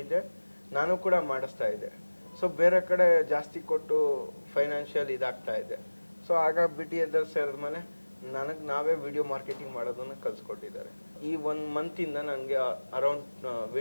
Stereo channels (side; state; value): both; inverted; correlation -1.00